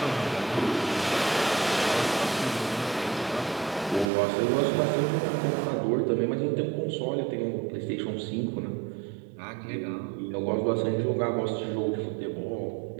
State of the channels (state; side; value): drops out; left; at 4.1 s